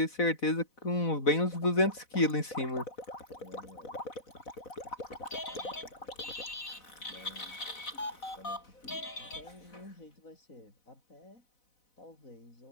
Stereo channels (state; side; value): late; right; 4.0 ms